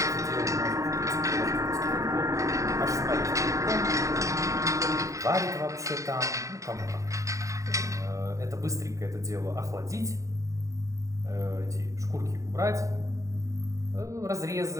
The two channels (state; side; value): late; left; 0.16 ms